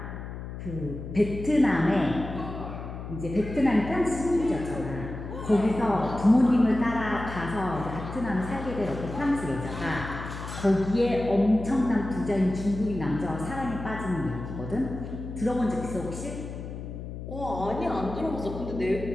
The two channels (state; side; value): noise; left; hum, 9 dB below the sound